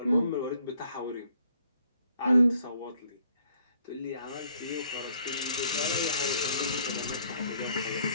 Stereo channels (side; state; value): both; inverted; correlation -0.65